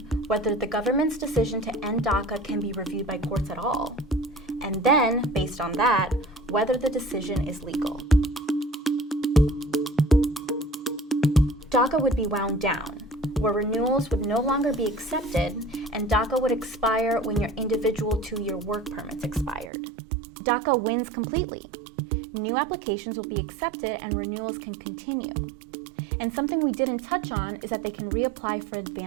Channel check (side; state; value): left; drops out; at 19.7 s